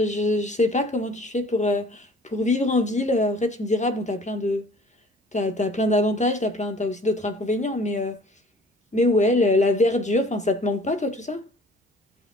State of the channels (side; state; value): both; normal; correlation 0.51